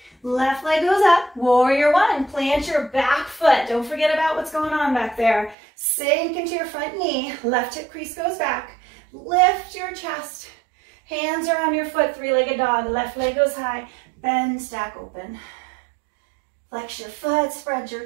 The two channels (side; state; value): left; drops out; at 5.6 s